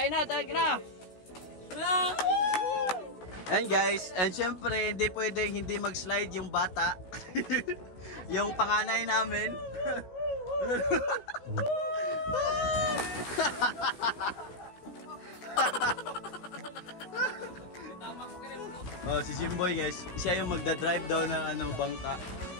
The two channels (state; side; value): late; right; 16 ms